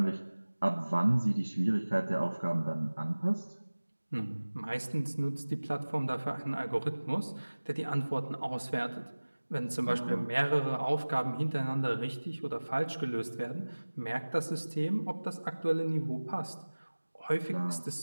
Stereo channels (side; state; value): both; inverted; correlation -1.00